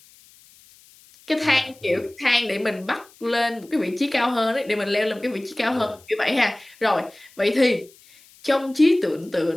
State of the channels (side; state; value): left; noise; hiss, 26 dB below the sound